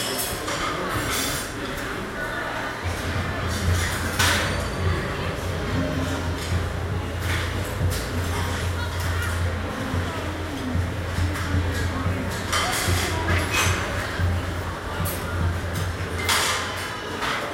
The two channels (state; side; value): identical; both; correlation 1.00